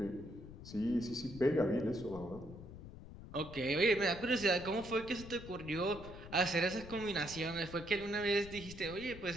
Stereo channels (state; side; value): noise; left; rumble, 14 dB below the sound